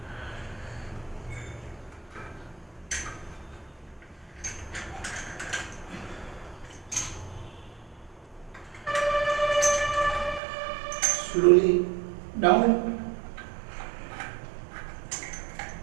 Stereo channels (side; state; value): left; drops out; at 10.4 s